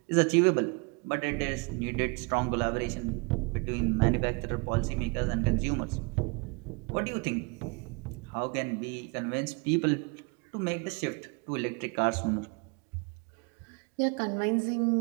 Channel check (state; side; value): quieter; left; 30.1 dB